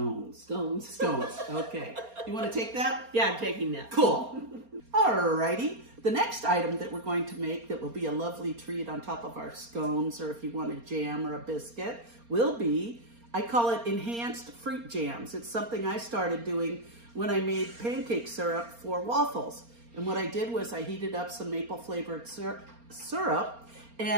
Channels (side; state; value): left; late; 4.3 ms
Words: Scones. Okay. You want to take that? Yeah, I'm taking that. Cool. Alrighty. The next item that we're going to make that will be a lovely treat on top of our scones, or if you want a jam or a biscuit, will be, I call it enhanced fruit jams. It's something I started doing when I made pancake syrup for waffles. And what I did was I heated up some maple flavored syrup,